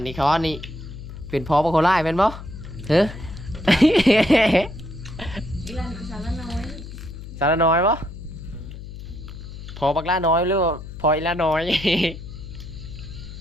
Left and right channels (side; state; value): left; noise; hum, 12 dB below the sound